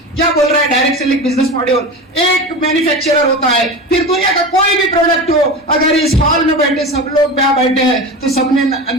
क्या बोल रहा है डायरेक्ट सेलिंग बिजनेस मॉडल? एक मैन्युफैक्चरर होता है, फिर दुनिया का कोई भी प्रोडक्ट हो, अगर इस हॉल में बैठे सब लोग बैठे हैं तो सबने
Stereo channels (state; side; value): normal; both; correlation 0.27